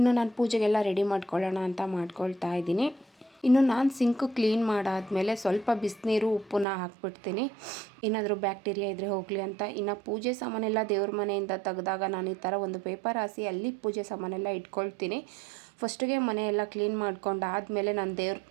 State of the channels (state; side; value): drops out; left; at 6.7 s